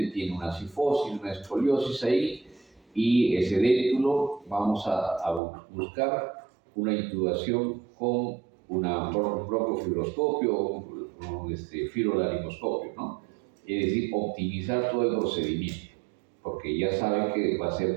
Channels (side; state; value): left; drops out; at 5.4 s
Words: tiene una cifosis, una escoliosis ahí, y ese déntulo vamos a buscar una intubación con un broncofibroscopio o un fibrolaringoscopio, ¿no? Es decir, optimizar todo el procedimiento, porque ya saben que va a